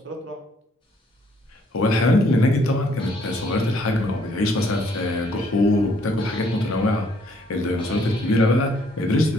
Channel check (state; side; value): normal; both; correlation 0.66